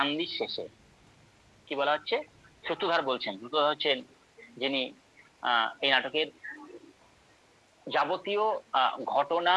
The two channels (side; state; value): both; identical; correlation 1.00